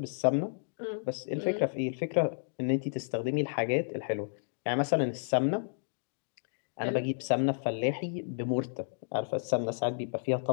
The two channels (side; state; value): right; silent; digital silence